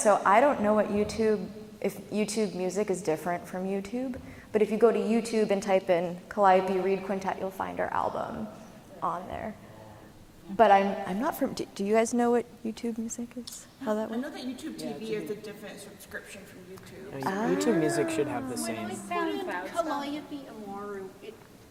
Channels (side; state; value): both; identical; correlation 1.00